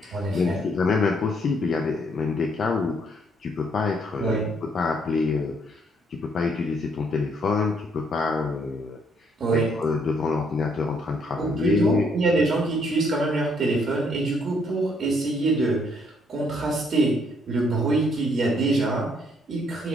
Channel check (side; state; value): both; normal; correlation 0.69